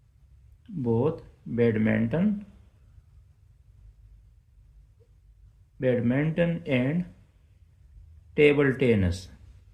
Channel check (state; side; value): identical; both; correlation 1.00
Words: both badminton badminton and table tennis